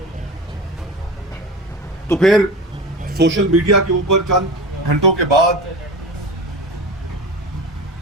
تو پھر سوشل میڈیا کے اوپر چند گھنٹوں کے بعد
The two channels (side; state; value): both; normal; correlation 0.30